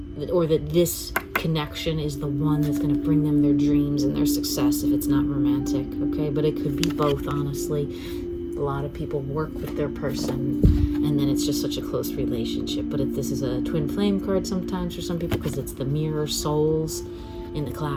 or that this connection is the one that's going to bring them their dreams and their success if it's not romantic, okay? But it could be both, honestly. A lot of people work with their person, and then it's just such a close relationship. But this is a twin flame card sometimes for some people, because it's the mirror souls in the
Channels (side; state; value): both; identical; correlation 1.00